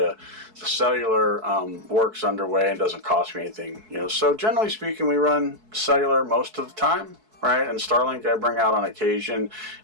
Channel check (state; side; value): late; left; 4.6 ms